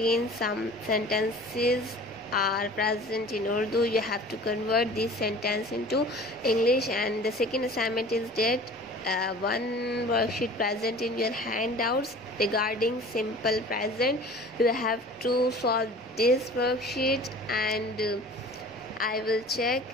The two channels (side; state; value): both; normal; correlation 0.43